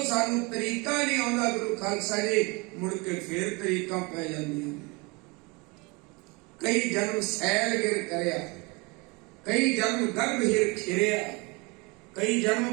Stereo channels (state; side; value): quieter; left; 27.7 dB